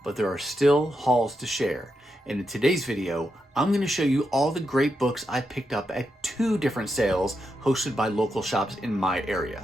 but there are still hauls to share. And in today's video, I'm going to show you all the great books I picked up at 2 different sales hosted by local shops in my area.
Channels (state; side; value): normal; both; correlation 0.85